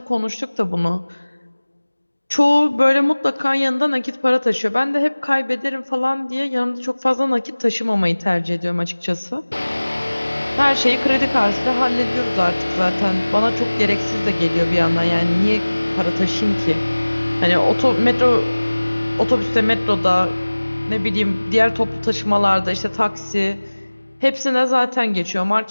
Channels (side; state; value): both; inverted; correlation -1.00